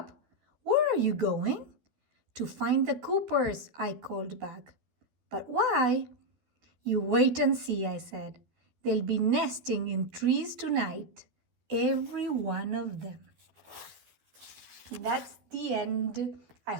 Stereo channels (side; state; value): left; late; 12 ms